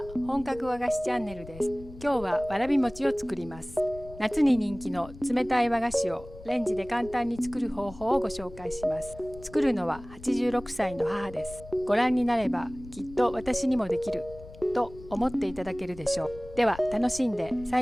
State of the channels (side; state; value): left; noise; rumble, 17 dB below the sound